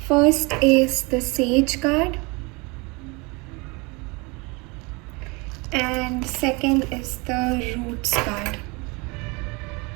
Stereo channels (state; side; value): quieter; left; 27.7 dB